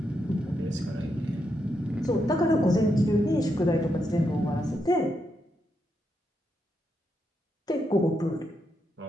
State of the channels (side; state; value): both; normal; correlation 0.82